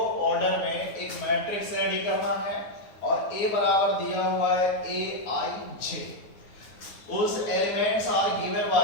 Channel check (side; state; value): right; late; 9.5 ms